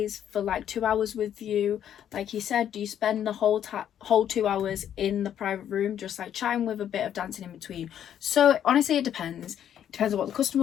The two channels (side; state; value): right; quieter; 9.9 dB